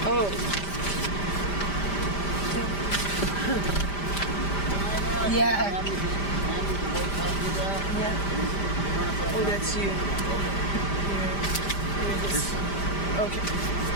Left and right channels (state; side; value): late; right; 5.0 ms